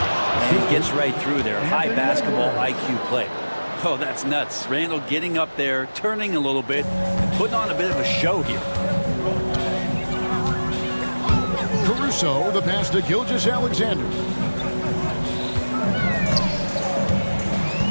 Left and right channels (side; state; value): both; inverted; correlation -1.00